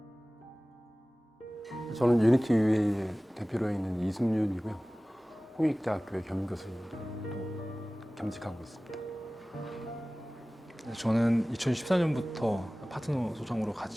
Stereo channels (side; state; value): both; normal; correlation 0.98